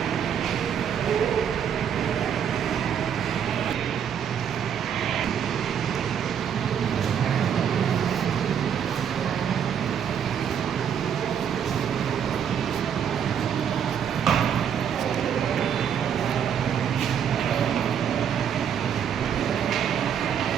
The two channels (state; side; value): quieter; left; 8.3 dB